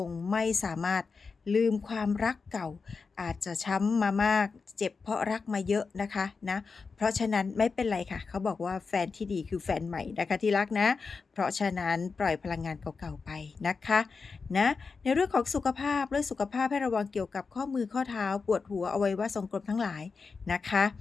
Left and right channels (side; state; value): right; quieter; 4.8 dB